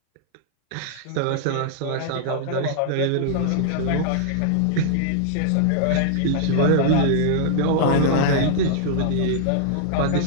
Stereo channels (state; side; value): different; both; correlation -0.01